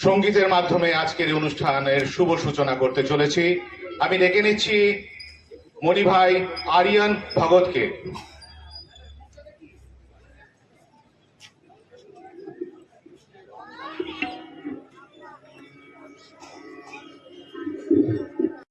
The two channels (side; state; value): both; identical; correlation 1.00